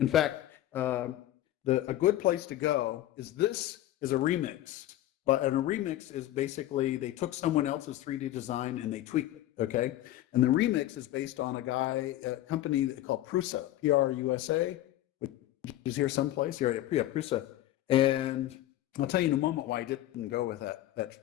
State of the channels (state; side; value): quieter; right; 14.2 dB